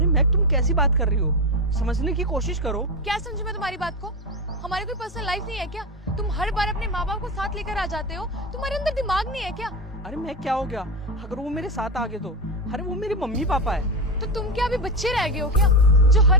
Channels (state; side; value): normal; both; correlation 0.15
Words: मैक तुम कैसी बात कर रही हो, समझने की कोशिश करो। क्या समझू मैं तुम्हारी बात को? हमारी कोई पर्सनल लाइफ नहीं है क्या? तुम हर बार अपने माँ बाप को साथ लेकर आ जाते हो, तुम्हारे अंदर दिमाग नहीं है क्या? अरे मैं क्या हो गया अगर वो मेरे साथ आ गए तो? अरे वो मेरे मम्मी पापा है। तो तुम क्या अभी बच्चे रह गए हो क्या, जो